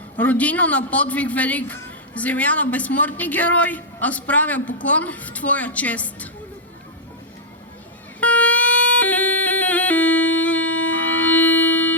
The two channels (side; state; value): both; normal; correlation -0.06